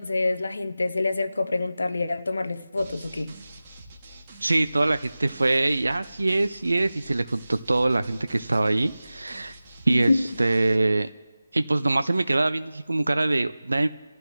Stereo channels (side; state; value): both; inverted; correlation -0.96